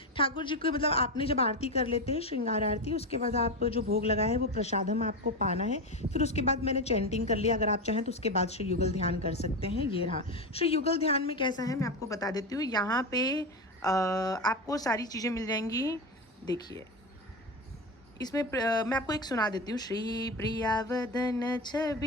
ठाकुर जी को मतलब आपने जब आरती कर लेते हैं श्रृंगार आरती, उसके बाद आप जो भोग लगा है वो प्रसादम आपको पाना है। फिर उसके बाद मैंने चैंटिंग कर लिया। अगर आप चाहें तो उसके बाद श्री युगल ध्यान कर सकते हैं। ये रहा श्री युगल ध्यान में कैसा है मैं आपको बता देती हूँ। यहाँ पे आपको सारी चीज़ें मिल जाएंगी। देखिए इसमें मैं आपको एक सुना देती हूँ। श्री प्रियावदन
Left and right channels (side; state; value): both; normal; correlation 0.17